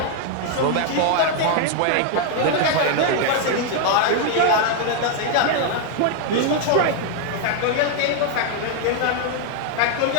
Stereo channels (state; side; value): different; both; correlation 0.00